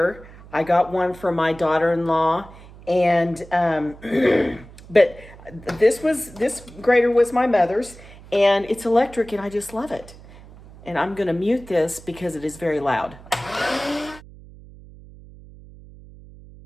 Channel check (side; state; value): right; noise; hum, 20 dB below the sound